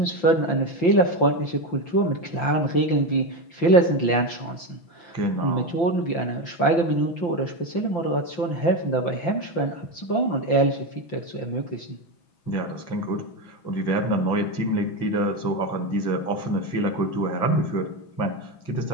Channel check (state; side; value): late; right; 5.8 ms